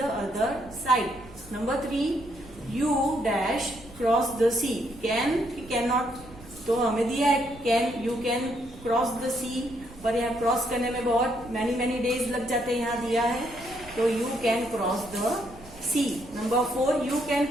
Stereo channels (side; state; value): right; noise; rumble, 20 dB below the sound